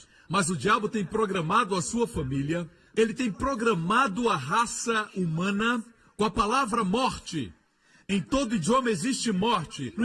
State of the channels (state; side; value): identical; both; correlation 1.00